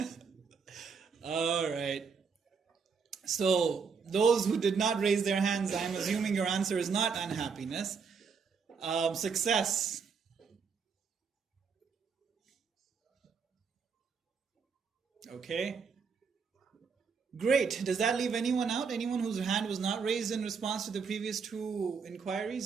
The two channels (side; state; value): left; quieter; 5.7 dB